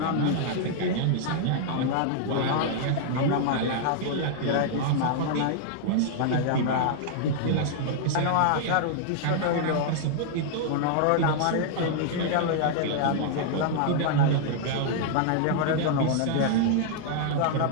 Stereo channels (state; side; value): different; both; correlation -0.01